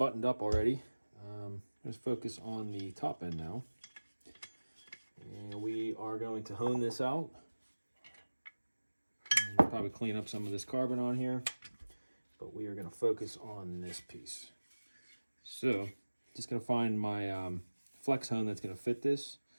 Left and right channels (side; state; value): both; inverted; correlation -1.00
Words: up already, let's focus on the top end now. And we are going to hone this out. And we'll probably clean up some of this carbon on here, but we are going to focus on this piece. So, just going to find my flex hone that's going to fit this,